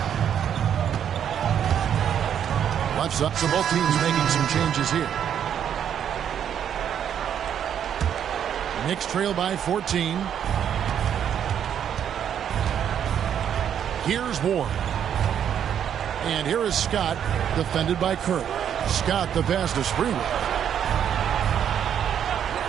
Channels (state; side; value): quieter; left; 9.1 dB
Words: Left side, so both teams making some changes here. Knicks trail by 14. Here's Ward. And here is Scott, defended by Kerr. Scott the pass to Sprewell.